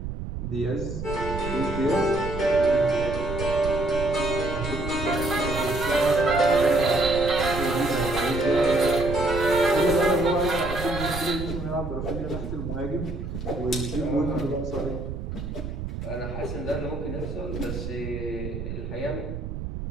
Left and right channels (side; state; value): right; noise; rumble, 6 dB below the sound